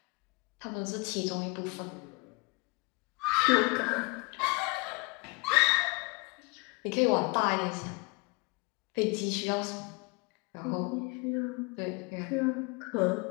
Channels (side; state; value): right; quieter; 29.7 dB